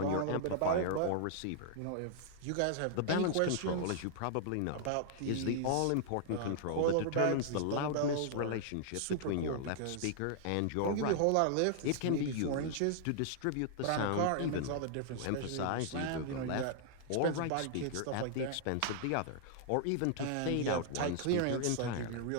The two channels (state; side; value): different; both; correlation -0.01